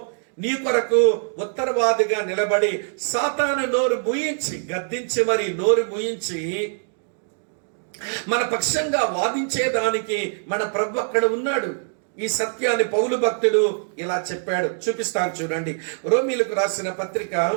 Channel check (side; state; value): left; silent; digital silence